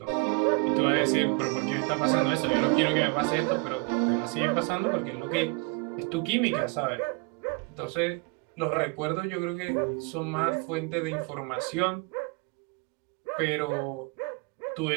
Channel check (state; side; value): quieter; left; 31.4 dB